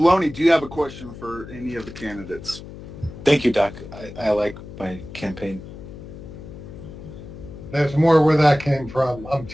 do you have a question for any of the candidates? Thank you, Doc. I like my campaign. There's more where that came from. I'm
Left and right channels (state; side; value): noise; left; hum, 14 dB below the sound